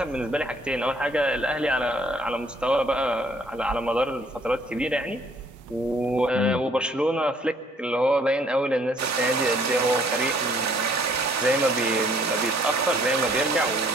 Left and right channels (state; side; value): normal; both; correlation 0.62